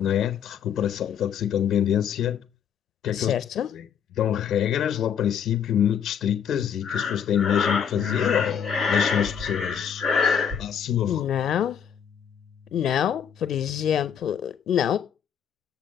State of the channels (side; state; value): right; quieter; 8.1 dB